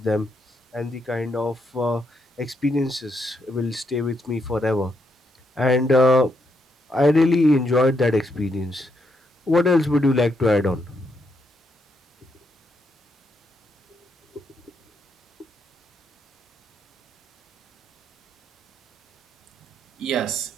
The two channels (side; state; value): both; normal; correlation 0.79